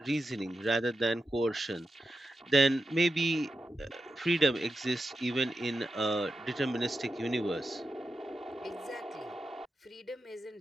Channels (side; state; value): both; normal; correlation 0.90